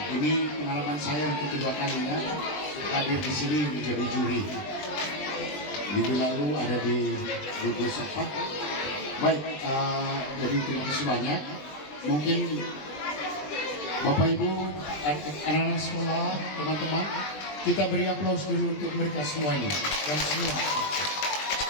Ini pengalaman saya untuk kedua kalinya hadir di sini menjadi juri. Minggu lalu ada di gugus apa? Baik, jadi terima kasih banyak. Mungkin Bapak Ibu, anak-anak sekolah, teman-teman, kita beri aplaus dulu untuk mereka semuanya dan semua.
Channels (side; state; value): right; late; 20 ms